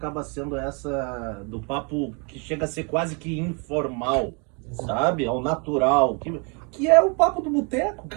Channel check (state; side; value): quieter; left; 34.5 dB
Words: sendo essa do papo que chega a ser quase que informal, sabe? Ao natural, que é o papo do boteco,